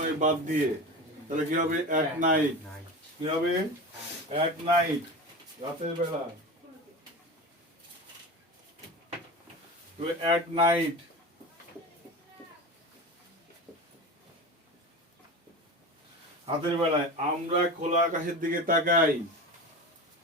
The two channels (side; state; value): both; normal; correlation 0.28